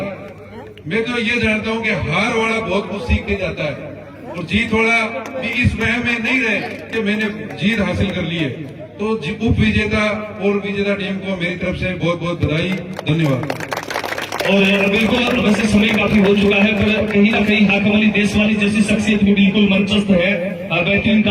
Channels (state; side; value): identical; both; correlation 1.00